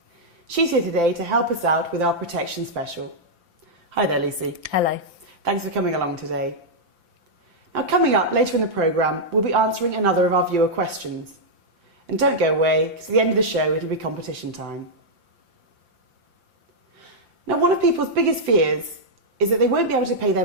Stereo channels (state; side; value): late; left; 5.8 ms